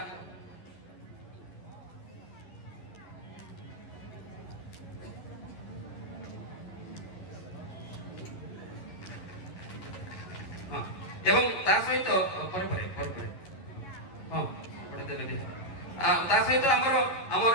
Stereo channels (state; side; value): late; right; 11 ms